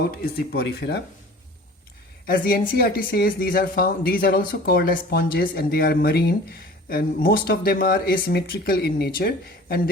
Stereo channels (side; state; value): both; normal; correlation 0.44